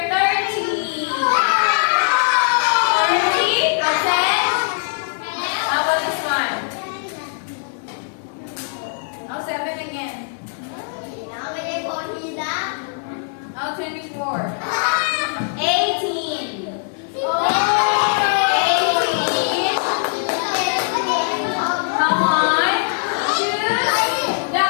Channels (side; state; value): right; silent; digital silence